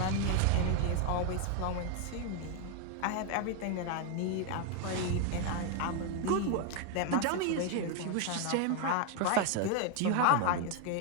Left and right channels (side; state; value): both; different; correlation 0.01